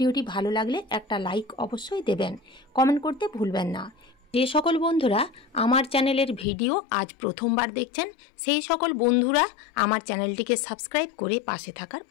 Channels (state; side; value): drops out; right; at 6.5 s